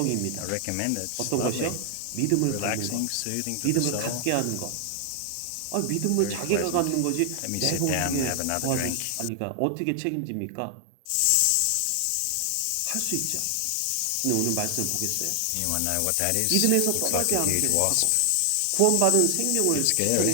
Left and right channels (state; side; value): different; both; correlation 0.00